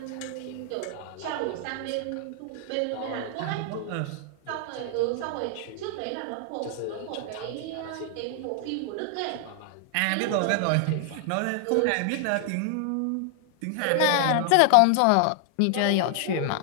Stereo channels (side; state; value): both; different; correlation 0.00